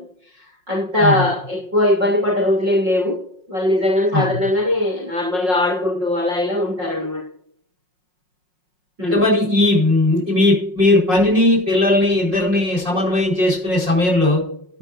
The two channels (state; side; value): late; left; 5.5 ms